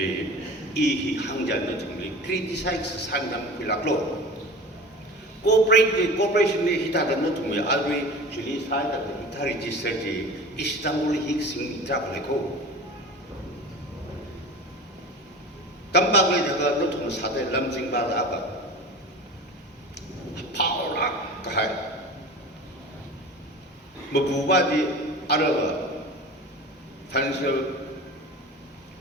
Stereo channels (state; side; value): normal; both; correlation 0.35